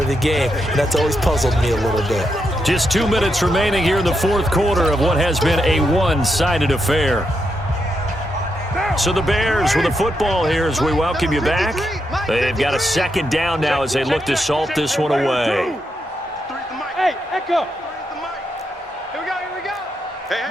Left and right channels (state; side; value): normal; both; correlation 0.83